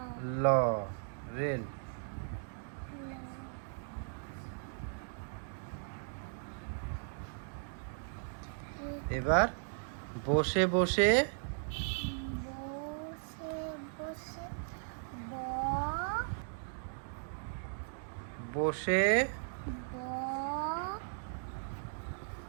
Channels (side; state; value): left; silent; digital silence